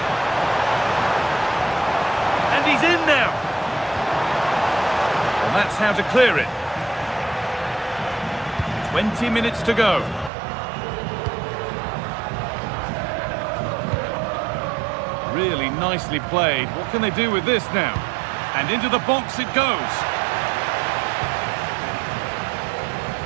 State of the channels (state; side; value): drops out; left; at 10.3 s